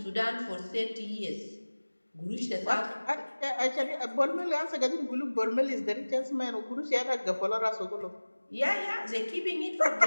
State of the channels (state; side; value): inverted; both; correlation -1.00